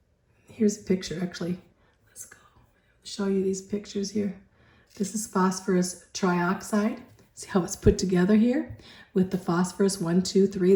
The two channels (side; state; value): both; identical; correlation 1.00